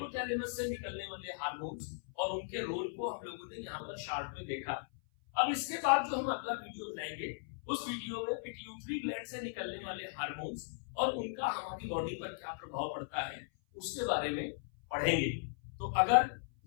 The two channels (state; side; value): silent; right; 53 dB below the other